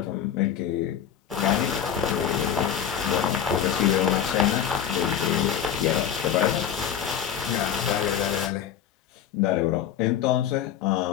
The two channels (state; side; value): quieter; right; 9.2 dB